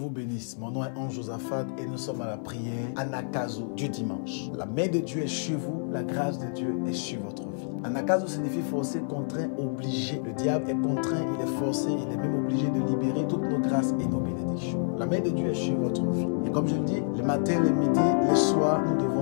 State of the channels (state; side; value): silent; right; 59 dB below the other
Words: bénisse. Mon nom est Ange Josaphat et nous sommes à la prière Anagkazo du dimanche. La main de Dieu est sur vous, la grâce de Dieu est sur votre vie. Anagkazo signifie forcé, contraint, obligé. Le diable est contraint, il est forcé, il est même obligé de libérer toutes nos grâces et nos bénédictions. La main de Dieu est sur votre vie. Et comme je le dis, le matin, le midi, le soir, nous